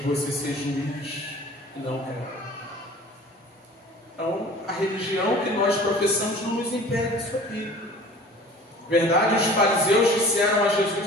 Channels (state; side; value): normal; both; correlation 0.45